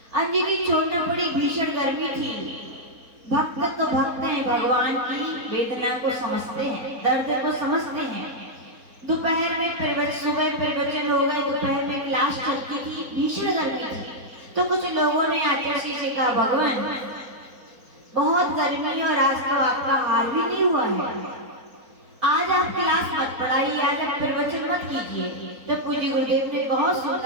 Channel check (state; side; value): late; left; 4.0 ms